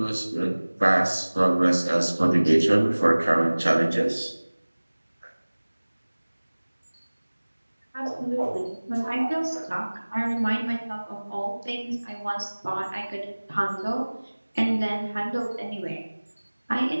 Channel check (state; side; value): inverted; both; correlation -1.00